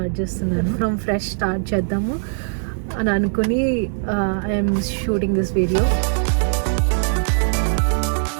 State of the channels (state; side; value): silent; left; digital silence